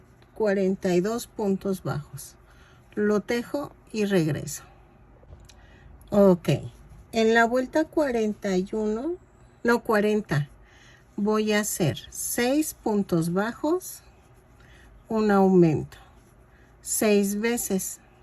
42 puntos bajos. Lo tejo y regreso. Ok, en la vuelta 41, no 40, voy a hacer 6 puntos bajos, un aumento, 6 veces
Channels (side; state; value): both; identical; correlation 1.00